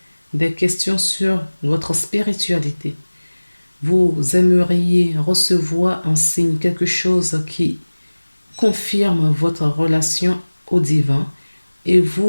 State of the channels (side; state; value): both; inverted; correlation -1.00